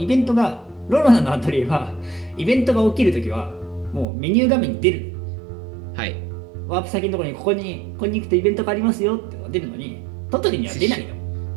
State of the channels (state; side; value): drops out; left; at 4.0 s